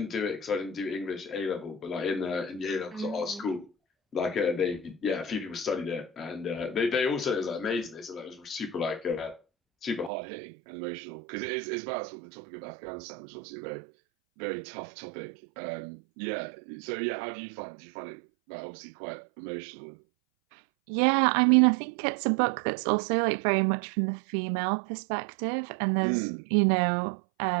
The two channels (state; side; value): drops out; left; at 10.1 s